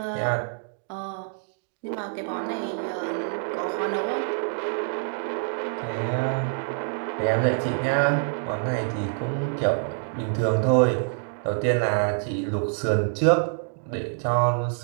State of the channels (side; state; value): left; silent; digital silence